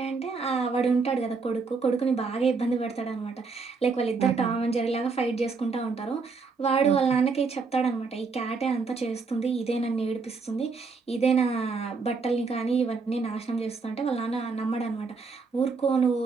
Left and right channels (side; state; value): left; quieter; 4.6 dB